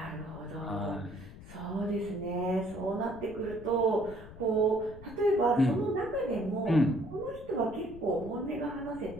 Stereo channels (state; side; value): noise; left; rumble, 16 dB below the sound